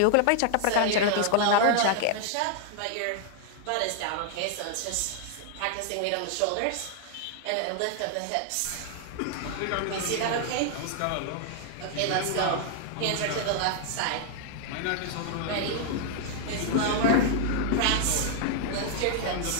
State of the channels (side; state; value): both; different; correlation 0.00